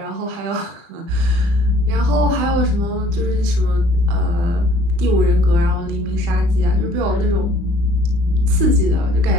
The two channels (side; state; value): left; late; 35 ms